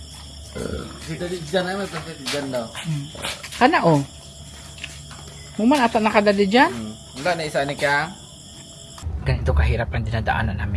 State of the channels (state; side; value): identical; both; correlation 1.00